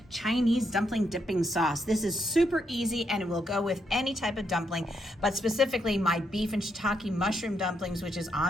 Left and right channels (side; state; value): both; normal; correlation 0.78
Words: Chinese dumpling dipping sauce. This is super easy and it will go with any type of dumpling, but specifically my beef and shiitake mushroom dumplings, which is